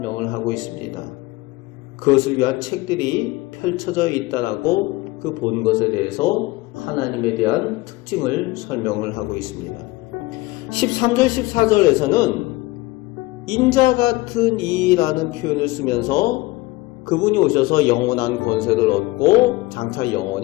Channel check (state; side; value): quieter; right; 20.8 dB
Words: 하고 있습니다. 그것을 위한 책들이 펼쳐져 있다라고 그 본 것에 대해서 하나님에 대한 특징을 설명을 하고 있습니다. 13절 14절에서는 인자 같은 이라는 표현을 쓰면서 그분이 오셔서 영원한 권세를 얻고 장차